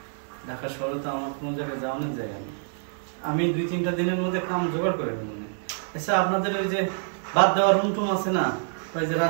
ঢাকা শহরে তো আমার কোনো জায়গায় যাওয়ানোর জায়গা নেই। আমি 2-3টা দিনের মধ্যে কাম জোগাড় করে নেব। আচ্ছা আপনাদের ওই যে বাদ দেওয়ার রুম টুম আছে না, ওই যে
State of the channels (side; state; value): left; silent; digital silence